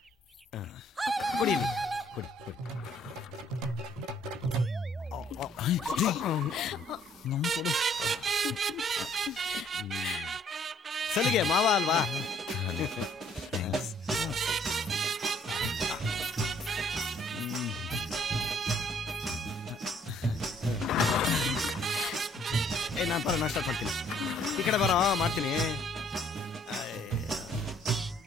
ಕೊಡಿ ಇಲ್ಲಿ. ಕೊಡಿ ಕೊಡಿ. ಸಲಿಗೆ ಮಾವ ಅಲ್ವಾ? ನಾನು ಬರೋ ನಾಷ್ಟ ಮಾಡ್ತೀನಿ. ಈ ಕಡೆ ಬರೋ ಮಾಡ್ತೀನಿ.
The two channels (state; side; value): normal; both; correlation 0.63